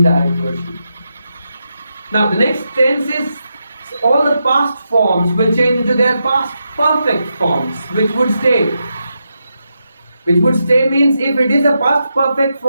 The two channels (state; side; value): inverted; both; correlation -0.85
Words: version. Now the next tense is all the past forms will change into their past perfect forms, which would stay. Which would stay means if it is a past perfect